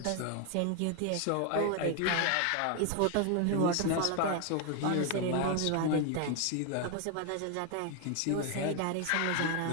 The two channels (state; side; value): different; both; correlation 0.01